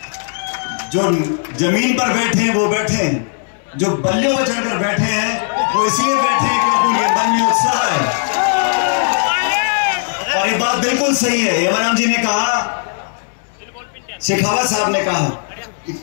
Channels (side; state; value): right; silent; digital silence